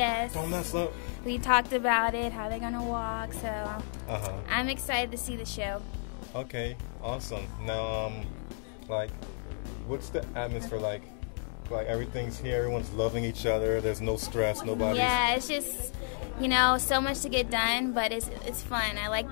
Don't mess up. We talked about it, how they're going to walk, so I'm excited to see the show. Okay, awesome. Now, what's the atmosphere like? Everything's here, everyone's loving each other, there's no stress, nobody's... Yeah, it's just, so much to get done, but it's fun. I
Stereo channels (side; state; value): right; silent; 57 dB below the other